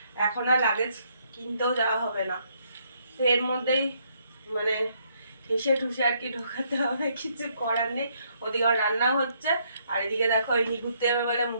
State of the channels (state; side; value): inverted; both; correlation -0.71